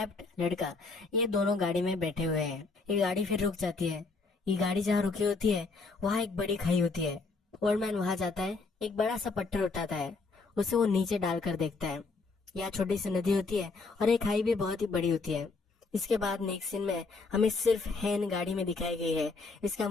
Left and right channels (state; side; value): quieter; right; 4.1 dB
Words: लड़का ये दोनों गाड़ी में बैठे हुए हैं। ये गाड़ी फिर रुक जाती है। ये गाड़ी जहाँ रुकी होती है वहाँ एक बड़ी खाई होती है। ओल्ड मैन वहाँ जाता है, एक बड़ा सा पत्थर उठाता है, उसे वो नीचे डालकर देखता है। यहाँ छोटी सी नदी होती है और एक खाई भी बहुत ही बड़ी होती है। इसके बाद नेक्स्ट सीन में हमें सिर्फ हैन गाड़ी में दिखाई गई है। इसका